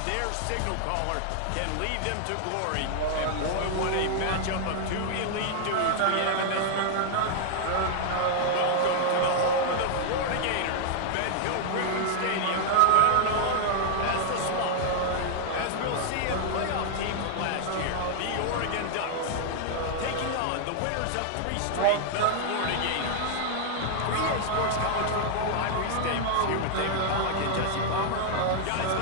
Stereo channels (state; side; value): different; both; correlation 0.00